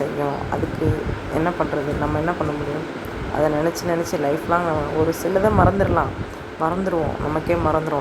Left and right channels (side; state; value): both; identical; correlation 1.00